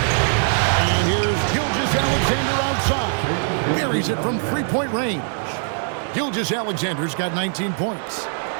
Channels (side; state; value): left; silent; 65 dB below the other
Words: And here's Gilgeous-Alexander outside. Buries it from three-point range. Gilgeous-Alexander's got 19 points.